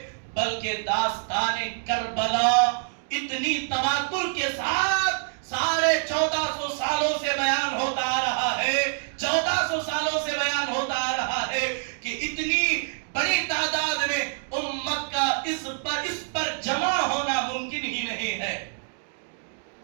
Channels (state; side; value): silent; left; digital silence